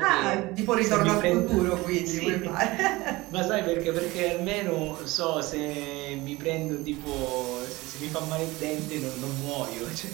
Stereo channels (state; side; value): quieter; left; 20.8 dB